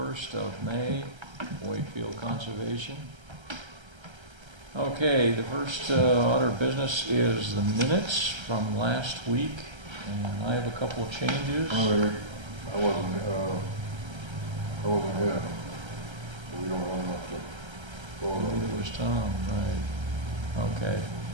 of May, Wakefield Conservation. Okay, the first order of business is the minutes from last week, and I have a couple of changes. I wasn't here. We don't have enough to vote on. It was Tom, right. Okay.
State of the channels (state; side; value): late; left; 1.3 ms